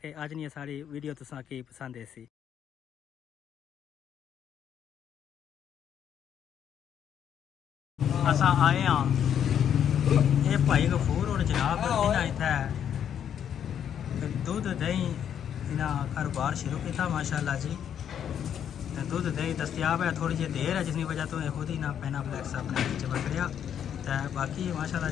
अज नहीं सारी वीडियो तुसां की पसंद ऐसी। असां आए हाँ ये भाई गफूर और जनाब इन्हें इत्थे दुध दही इन्हें कारोबार शुरू किया माशाल्लाह जी। दुध दही दस्तियाब है, थोड़ी जी देर है जिसकी वजह तो खुद ही ना पैना फ्लैक्स अपने नीचे पकड़िया। तो बाकी माशाल्लाह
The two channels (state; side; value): quieter; right; 9.0 dB